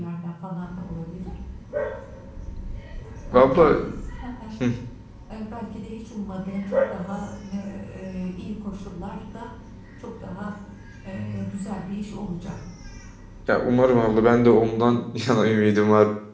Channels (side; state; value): both; identical; correlation 1.00